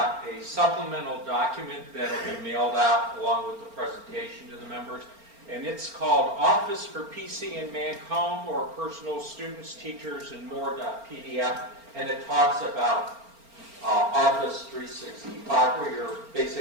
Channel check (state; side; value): late; left; 4.4 ms